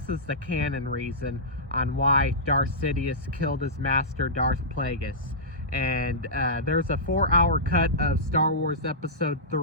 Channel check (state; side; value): late; left; 1.1 ms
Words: is the canon reason on why Darth Sidious killed his master, Darth Plagueis. And there's a 4-hour cut of Star Wars Episode